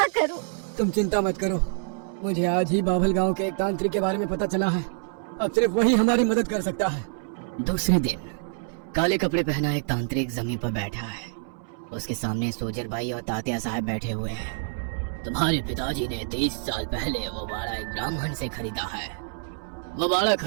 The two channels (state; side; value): silent; left; 61 dB below the other